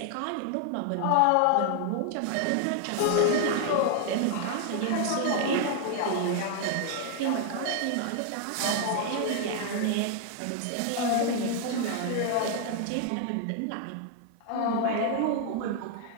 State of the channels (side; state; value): both; different; correlation 0.00